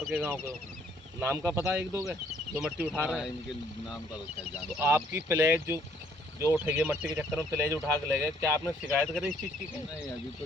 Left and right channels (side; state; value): both; normal; correlation 0.64